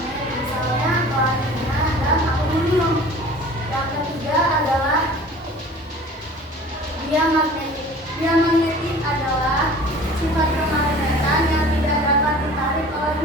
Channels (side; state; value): both; normal; correlation 0.44